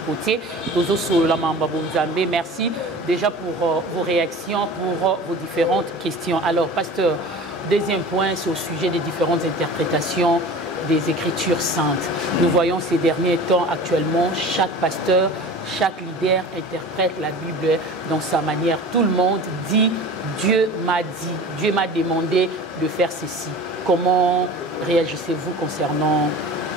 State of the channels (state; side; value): normal; both; correlation 0.38